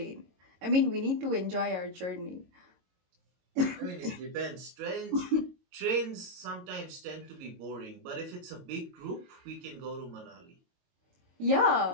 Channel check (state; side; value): late; left; 22 ms